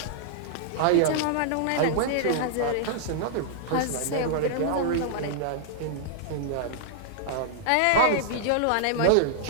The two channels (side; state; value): both; different; correlation -0.01